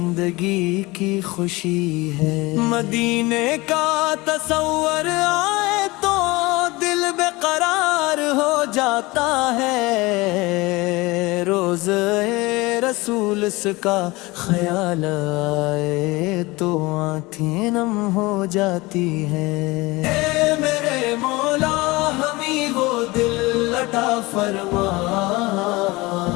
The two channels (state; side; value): quieter; right; 22.3 dB